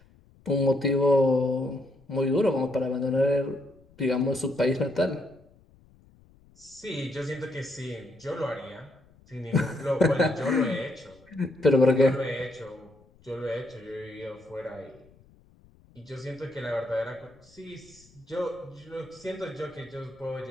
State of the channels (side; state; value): left; noise; rumble, 28 dB below the sound